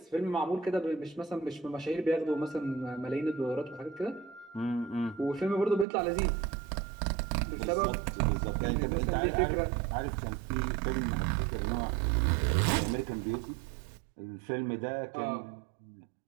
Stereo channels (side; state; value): left; drops out; at 5.9 s